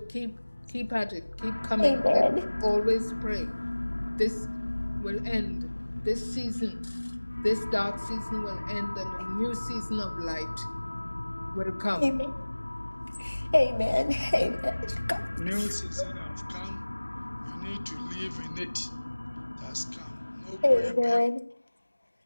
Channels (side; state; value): both; inverted; correlation -1.00